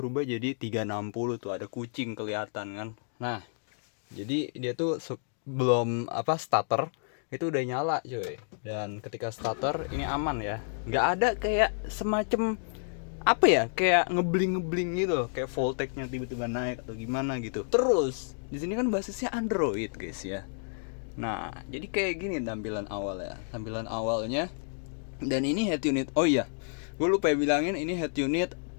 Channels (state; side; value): silent; right; digital silence